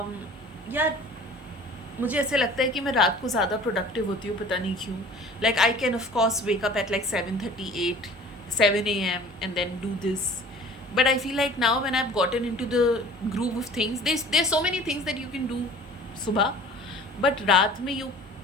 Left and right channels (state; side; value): normal; both; correlation 0.46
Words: यार मुझे ऐसे लगता है कि मैं रात को ज़्यादा प्रोडक्टिव होती हूँ, पता नहीं क्यों. Like I can of course wake up at like 7:38 7 a.m. and then do this, but I feel like now when I've gotten into the groove of things, there's so many things that you can do सुबह, but रात में you